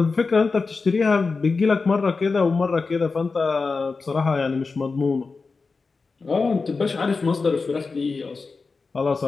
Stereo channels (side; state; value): right; quieter; 4.3 dB